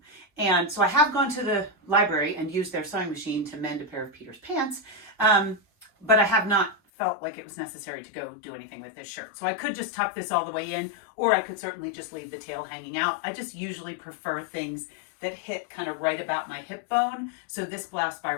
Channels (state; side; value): drops out; right; at 6.8 s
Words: And so I have gone to the library and used their sewing machine to mend a pair of Peter's pants, but I have not felt like it was necessary to go do anything with this shirt. So I could just tuck this all the way in, or I could certainly just leave the tail hanging out. I just usually prefer things that hit kind of right about my hip bone. So this blouse by